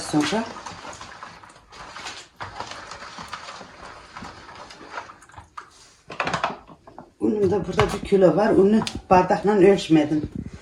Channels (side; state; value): both; identical; correlation 1.00